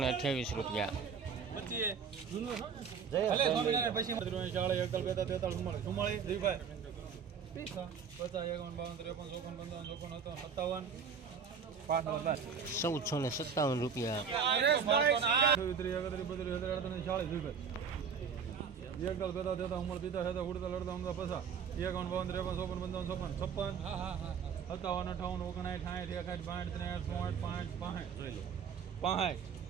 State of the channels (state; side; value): quieter; left; 6.6 dB